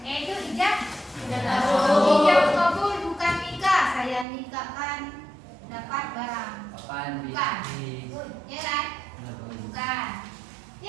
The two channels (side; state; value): left; drops out; at 4.2 s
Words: yaitu ijab kabul, bukan nikah. Saya nikahkan dapat barang, bukan, ya kan? Bukan.